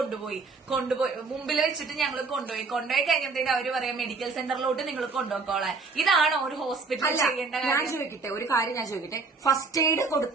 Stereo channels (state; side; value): quieter; left; 4.2 dB